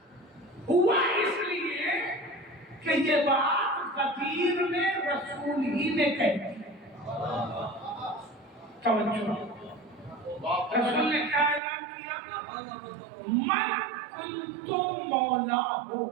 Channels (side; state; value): left; drops out; at 11.6 s